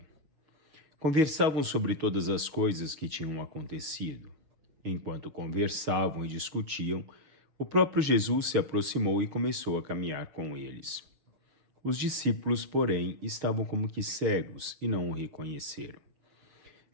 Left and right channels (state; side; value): late; left; 6.4 ms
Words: Conversavam sobre todas as coisas que tinham acontecido. Enquanto conversavam e discutiam, o próprio Jesus se aproximou e começou a caminhar com eles. Os discípulos, porém, estavam como que cegos e não o reconheceram.